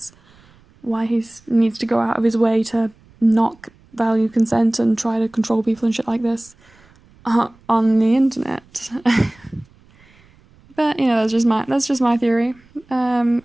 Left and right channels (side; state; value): right; noise; rumble, 29 dB below the sound